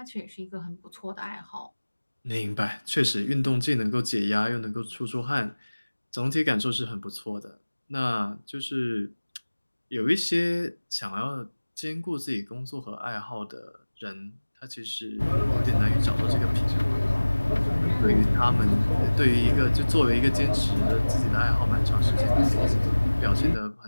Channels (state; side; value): inverted; both; correlation -1.00